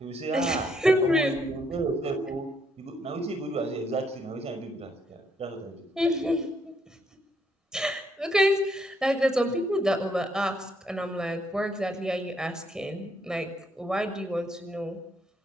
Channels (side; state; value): both; normal; correlation 0.72